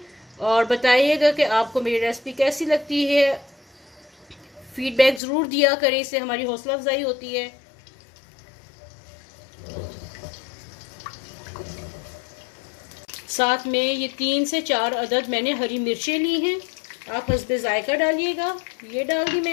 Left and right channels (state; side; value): drops out; right; at 5.2 s